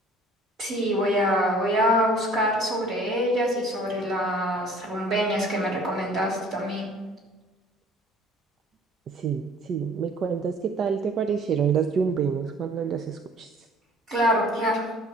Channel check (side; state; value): both; normal; correlation 0.52